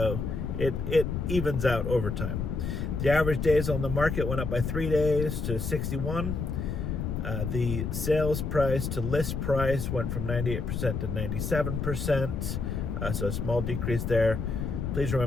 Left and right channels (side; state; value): left; noise; rumble, 2 dB below the sound